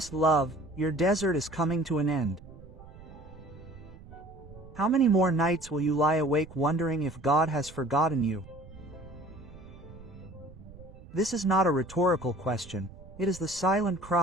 love, your desert is coming to an end. How many more nights will you lie awake wondering if God has forgotten you? This is not a rhetorical question, it is the silent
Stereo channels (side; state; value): right; noise; rumble, 18 dB below the sound